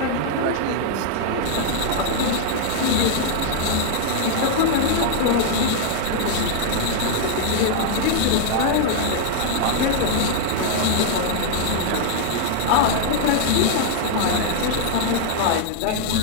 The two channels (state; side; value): different; both; correlation -0.01